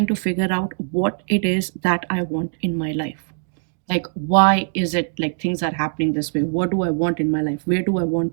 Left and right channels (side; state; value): left; silent; digital silence